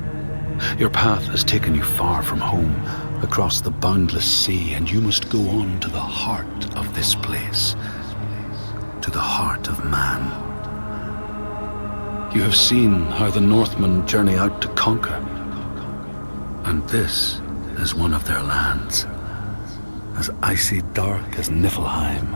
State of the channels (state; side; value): inverted; both; correlation -1.00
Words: Your path has taken you far from home, across the boundless sea, and you must go on to the heart of this place, to the heart of man. You have seen how the Northmen journey out to conquer, and this is one of their lands, as icy dark as Niflheim,